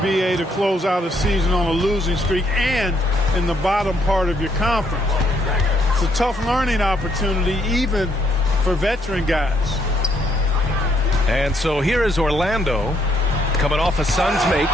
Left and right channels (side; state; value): both; normal; correlation 0.72